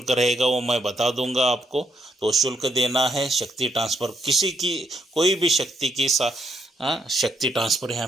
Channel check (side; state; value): both; normal; correlation 0.75